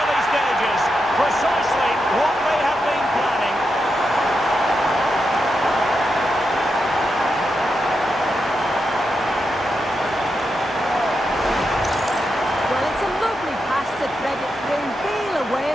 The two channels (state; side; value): normal; both; correlation 0.86